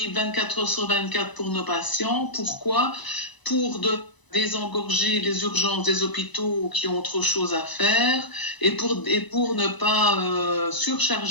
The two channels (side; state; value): right; late; 1.0 ms